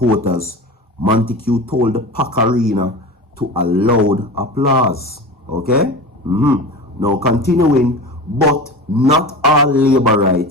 Montague told the Pack Arena to a loud applause. Okay? Now continuing, but not all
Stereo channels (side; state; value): both; normal; correlation 0.31